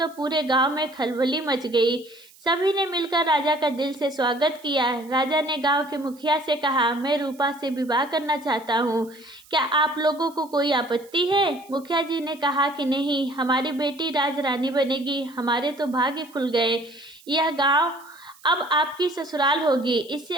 पूरे गांव में खलबली मच गई। सभी ने मिलकर राजा का दिल से स्वागत किया। राजा ने गांव के मुखिया से कहा, मैं रूपा से विवाह करना चाहता हूँ, क्या आप लोगों को कोई आपत्ति है? मुखिया जी ने कहा कि नहीं, हमारी बेटी राजरानी बनेगी। हमारे तो भाग्य खुल गए। यह गांव अब आपकी ससुराल होगी, इससे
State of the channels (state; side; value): noise; right; hiss, 26 dB below the sound